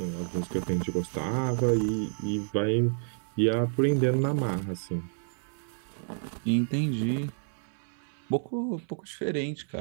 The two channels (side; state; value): left; silent; 58 dB below the other